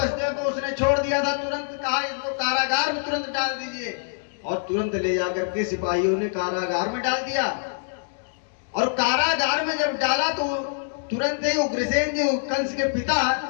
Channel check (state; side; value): silent; right; digital silence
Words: को उसने छोड़ दिया था, तुरंत कहा इसको कारागार में तुरंत डाल दीजिए, और तुरंत ले जाकर के सिपाहियों ने कारागार में डाल दिया। और कारागार में जब डाला तो तुरंत ही उग्रसेन जी कंस के पिता